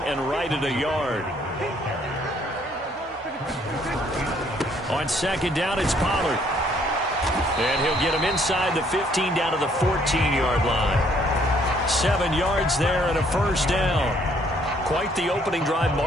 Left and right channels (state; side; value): normal; both; correlation 0.65